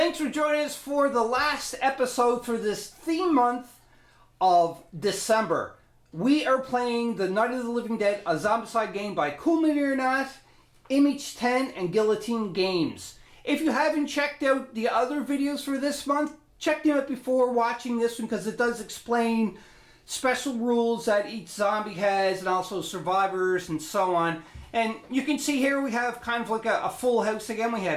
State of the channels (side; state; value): both; identical; correlation 1.00